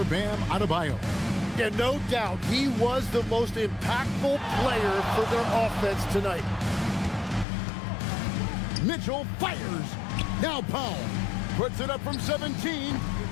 Bam Adebayo. Yeah, no doubt. He was the most impactful player for their offense tonight. Mitchell fires. Now Powell puts it up from 17.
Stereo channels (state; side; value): drops out; right; at 7.5 s